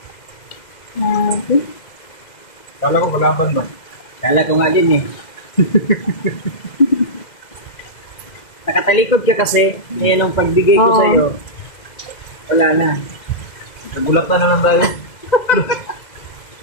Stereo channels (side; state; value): right; late; 2.1 ms